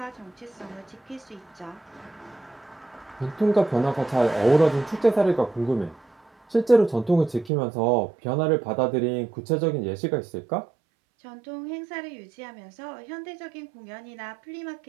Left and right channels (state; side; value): drops out; left; at 7.5 s